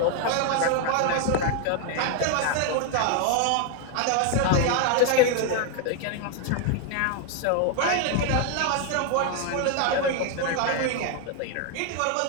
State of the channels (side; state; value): both; different; correlation 0.01